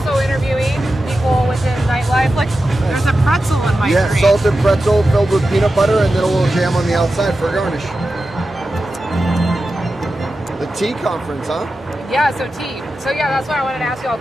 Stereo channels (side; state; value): both; normal; correlation 0.92